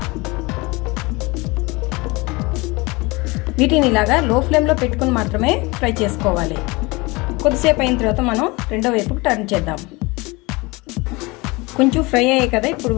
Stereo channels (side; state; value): right; quieter; 24.6 dB